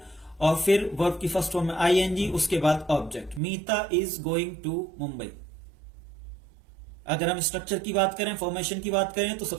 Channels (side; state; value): left; drops out; at 3.4 s